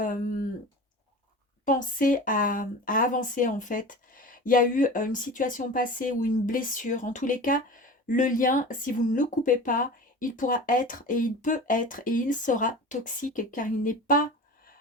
penser à avancer en fait. Il y a eu une situation passée ou une blessure. En tous les cas, le lien, si vous ne le coupez pas, il pourra être et il peut être et il sera toxique car il n'est pas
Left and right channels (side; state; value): both; normal; correlation 0.34